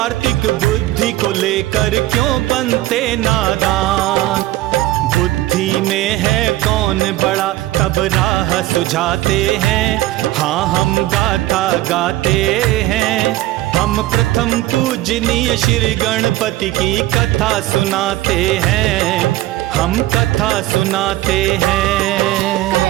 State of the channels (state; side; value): quieter; left; 16.1 dB